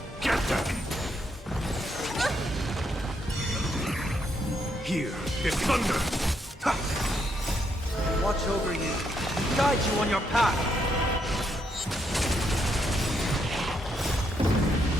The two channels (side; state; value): both; normal; correlation 0.77